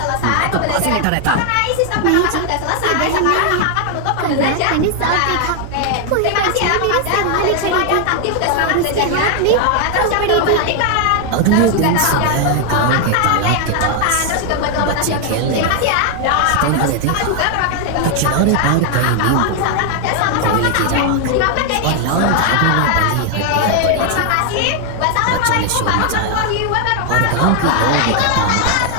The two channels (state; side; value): different; both; correlation 0.00